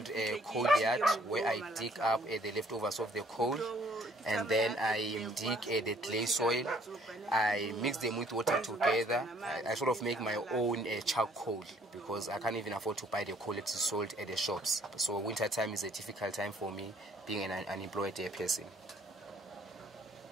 coal yard where I dig up the leftovers of the coal, and then I dig the clay soil. I mix them with water together. I sort of make my own charcoal because I can't even afford to buy the coal that is sold at the shops. So winter time is a difficult time for me, being an unemployed person.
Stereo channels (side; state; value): both; normal; correlation 0.61